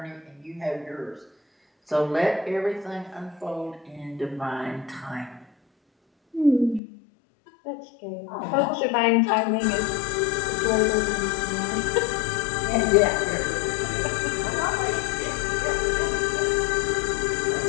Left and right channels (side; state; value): right; drops out; at 6.8 s